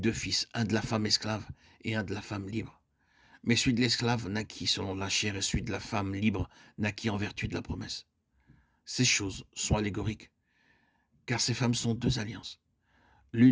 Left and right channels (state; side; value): identical; both; correlation 1.00